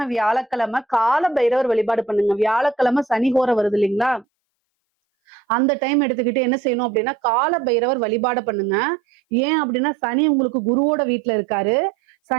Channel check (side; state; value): left; drops out; at 4.2 s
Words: கால பைரவர் வழிபாடு பண்ணுங்க. வியாழக்கிழமை சனி ஹோரை வருது இல்லைங்களா, அந்த டைம் எடுத்துக்கிட்டு என்ன செய்யணும் அப்படின்னா கால பைரவர் வழிபாடு பண்ணுங்க. ஏன் அப்படின்னா சனி உங்களுக்கு குருவோட வீட்டுல இருக்காரு.